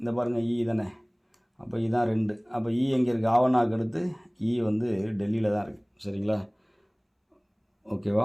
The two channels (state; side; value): identical; both; correlation 1.00